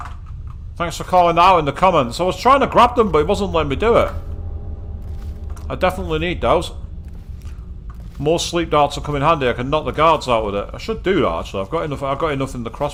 Thanks for calling out in the comments. I was trying to grab them, but it wasn't letting me do it. I definitely need those. More sleep darts will come in handy. I can knock the guards out with it. I should do that actually. I've got enough in the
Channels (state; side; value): identical; both; correlation 1.00